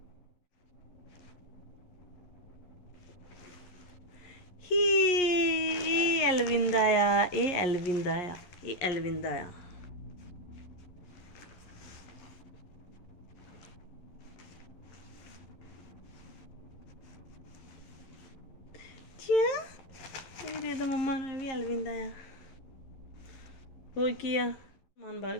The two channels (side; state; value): right; late; 11 ms